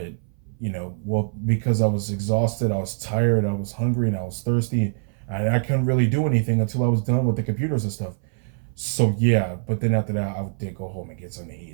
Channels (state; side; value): silent; left; 60 dB below the other